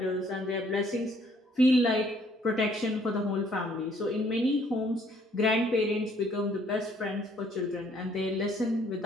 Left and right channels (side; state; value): both; normal; correlation 0.63